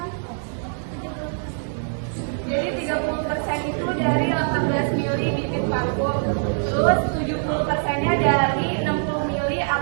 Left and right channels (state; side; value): silent; left; digital silence